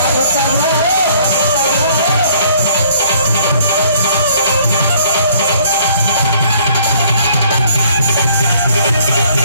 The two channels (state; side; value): inverted; both; correlation -0.60